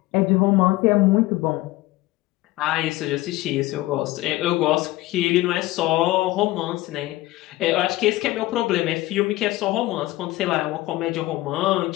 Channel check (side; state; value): right; quieter; 18.0 dB